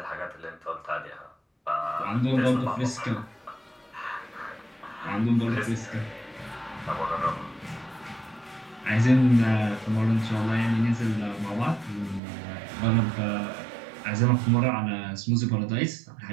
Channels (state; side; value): drops out; left; at 12.2 s